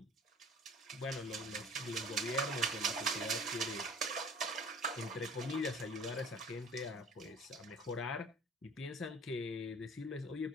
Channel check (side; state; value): both; normal; correlation 0.46